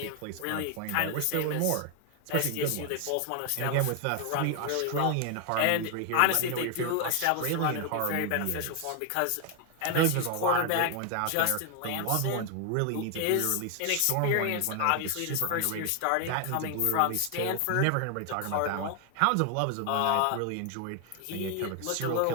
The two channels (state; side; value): different; both; correlation 0.00